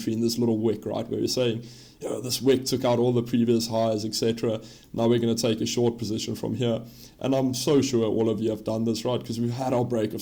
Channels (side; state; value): both; identical; correlation 1.00